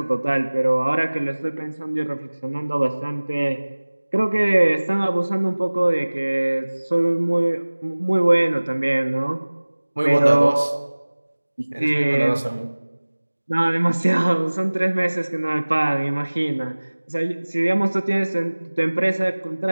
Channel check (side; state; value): both; inverted; correlation -1.00